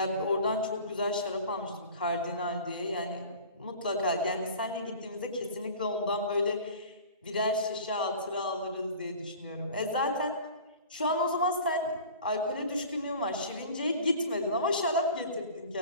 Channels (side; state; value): both; inverted; correlation -0.41